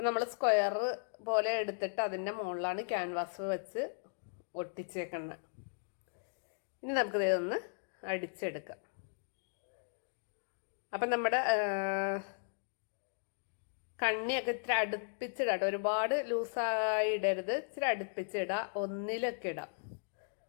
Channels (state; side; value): silent; right; digital silence